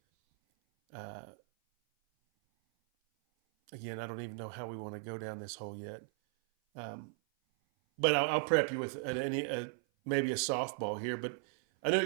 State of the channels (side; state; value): left; silent; 53 dB below the other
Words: again, I don't even know how we want to go down this hole yet. But I'll prep you with maybe a softball here. But I know